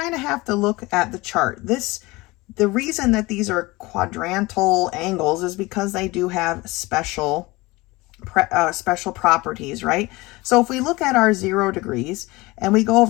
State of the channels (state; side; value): quieter; right; 21.9 dB